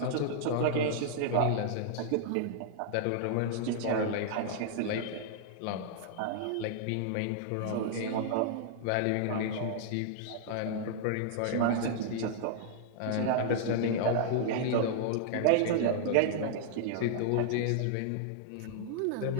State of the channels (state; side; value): different; both; correlation -0.01